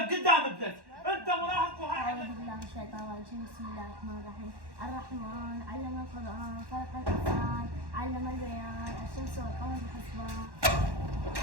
قدام ابنك، انت مراهق وهاي أعوذ بالله من الشيطان الرجيم. بسم الله الرحمن الرحيم. الرحمن علم القرآن، خلق الإنسان، علم البيان، الشمس والقمر بحسبان.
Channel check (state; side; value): late; left; 1.1 ms